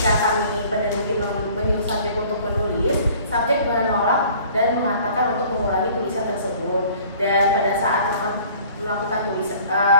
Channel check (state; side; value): inverted; both; correlation -0.51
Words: kami peneliti menyuruh subjek untuk menulis, subjek menolak dan mengatakan untuk mengurangi tulisan tersebut. Dan pada saat melakukan